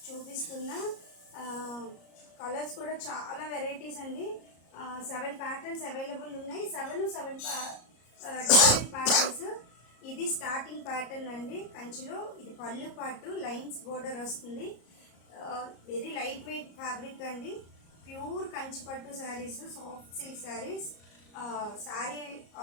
చూపిస్తున్నా. కలర్స్ కూడా చాలా వెరైటీస్ అండి. 7 ప్యాటర్న్స్ అవైలబుల్ ఉన్నాయి. 7 డిఫరెంట్ ప్యాటర్న్స్. ఇది స్టార్టింగ్ ప్యాటర్న్ అండి కంచిలో. ఇది పళ్ళు పాటు లైన్స్ బోర్డర్ వస్తుంది. వెరీ లైట్ వెయిట్ ఫ్యాబ్రిక్ అండి. ప్యూర్ కంచి పట్టు saris, soft silk saris. Sari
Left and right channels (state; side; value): late; right; 34 ms